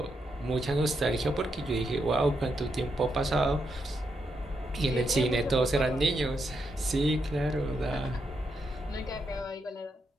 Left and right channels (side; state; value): both; normal; correlation 0.82